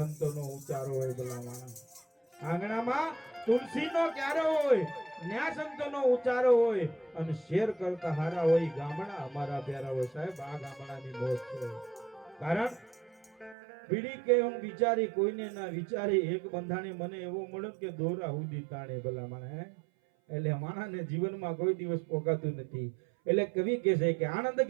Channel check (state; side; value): drops out; left; at 13.6 s